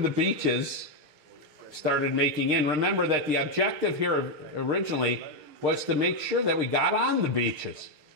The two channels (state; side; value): late; left; 6.6 ms